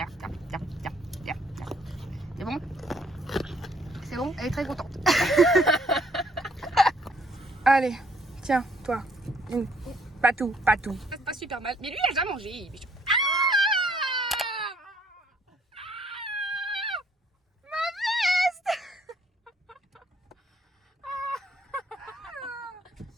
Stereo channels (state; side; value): normal; both; correlation 0.65